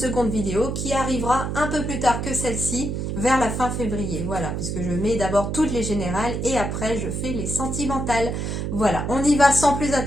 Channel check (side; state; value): right; noise; hum, 3 dB below the sound